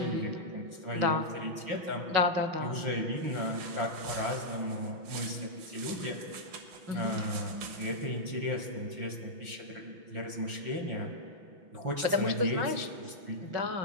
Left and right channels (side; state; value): left; late; 6.0 ms